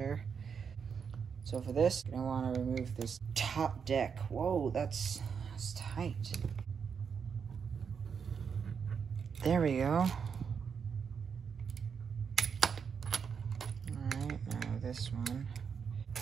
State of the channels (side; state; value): left; quieter; 6.5 dB